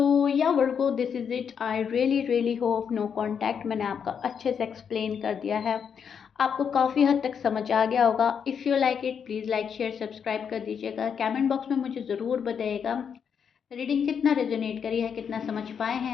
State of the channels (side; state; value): right; quieter; 7.2 dB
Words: या Virgo, this is it. I really really hope no contact मैंने आपका अच्छे से एक्सप्लेन कर दिया है, आपको काफ़ी हद तक समझ आ गया होगा। If you like it please like share subscribe कर दीजिएगा, कमेंट बॉक्स में मुझे ज़रूर बताइएगा रीडिंग कितना रेजोनेट करी है, कितना समझ पाए